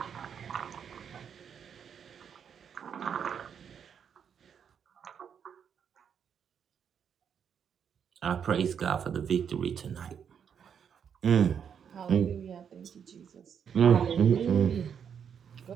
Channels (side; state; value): left; quieter; 7.7 dB